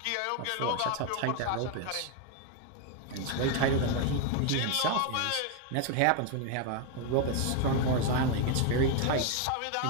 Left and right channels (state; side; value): different; both; correlation 0.01